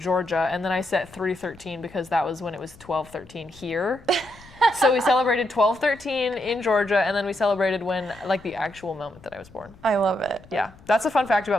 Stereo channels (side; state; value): left; noise; rumble, 23 dB below the sound